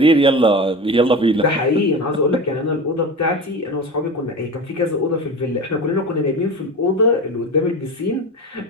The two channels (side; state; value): both; normal; correlation 0.29